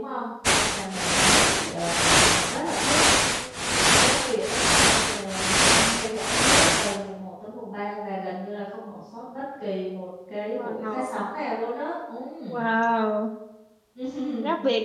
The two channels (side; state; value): both; identical; correlation 1.00